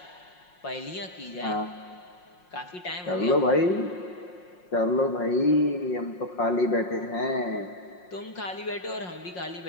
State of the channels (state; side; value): late; right; 5.6 ms